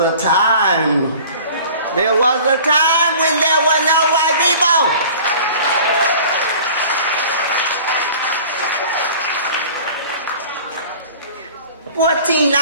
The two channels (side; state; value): both; inverted; correlation -0.44